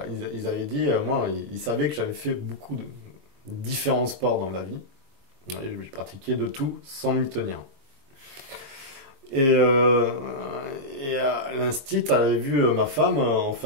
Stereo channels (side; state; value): left; late; 22 ms